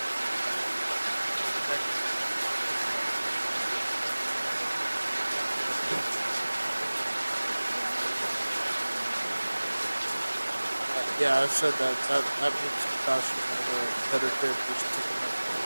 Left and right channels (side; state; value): both; inverted; correlation -1.00